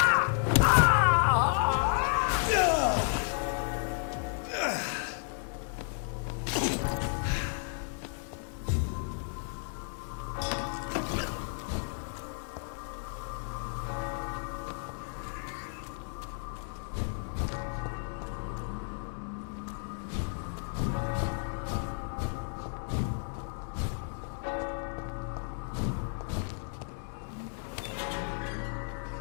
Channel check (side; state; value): right; silent; 56 dB below the other